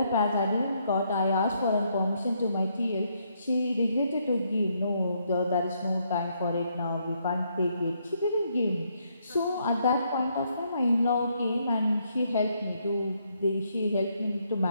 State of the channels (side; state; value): both; inverted; correlation -0.74